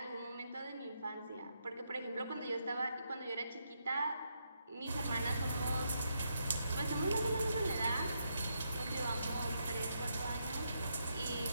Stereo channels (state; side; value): inverted; both; correlation -0.80